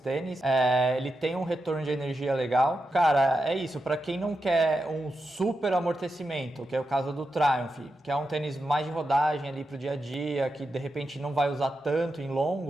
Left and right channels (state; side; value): normal; both; correlation 0.88